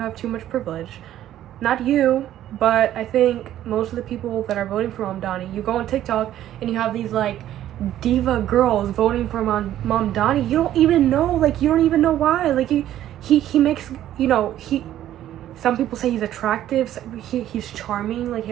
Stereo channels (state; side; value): quieter; left; 12.3 dB